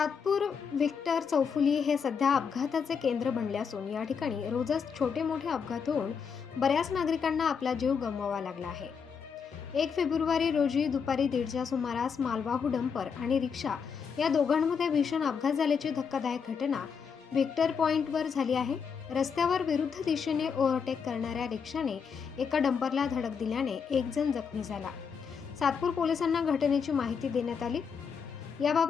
Victor चौफुली हे सध्या अपघाताचे केंद्र बनले असून या ठिकाणी रोजच छोटे मोठे अपघात होऊन बऱ्याच नागरिकांना आपला जीव गमवावा लागला आहे। 1 फेब्रुवारी रोजी दुपारी 1:30च्या सुमारास मालवाहू डंपर आणि रिक्षा या दोघांमध्ये भीषण अपघात झाल्याची धक्कादायक घटना व्हिक्टर पॉइंटवर झाली आहे। रस्त्यावर विरुद्ध दिशेने ओव्हरटेक करणाऱ्या रिक्षाने एका डंपरला धडक दिल्याने एक जण जखमी झाला। सातपूर पोलिसांना घटनेची माहिती देण्यात आली।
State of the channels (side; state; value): right; quieter; 6.3 dB